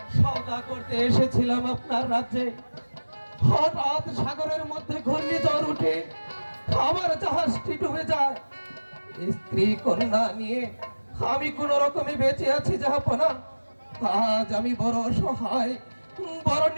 সওদা করতে এসেছিলাম আপনার রাজ্যে। হঠাৎ সাগরের মধ্যে ঘূর্ণিঝড় উঠে আমার জাহাজটি ডুবে যায়। স্ত্রী কন্যা নিয়ে আমি কোন রকমে বেঁচে আছি জাহাপনা। আজ আমি বড় অসহায়, বড়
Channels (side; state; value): both; inverted; correlation -1.00